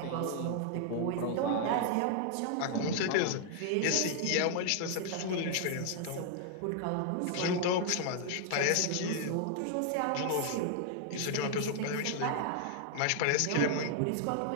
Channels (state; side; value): different; both; correlation 0.00